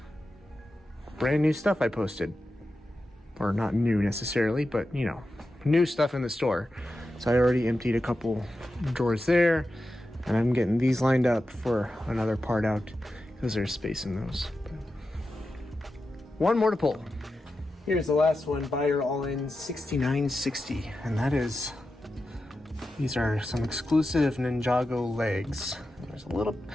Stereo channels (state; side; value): normal; both; correlation 0.91